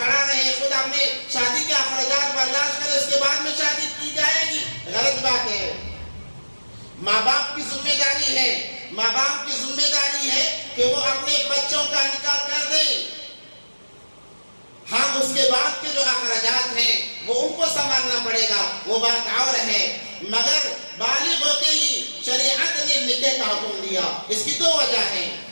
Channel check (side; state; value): both; inverted; correlation -1.00